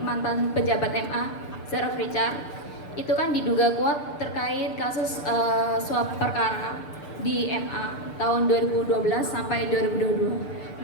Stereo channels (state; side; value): late; right; 6.8 ms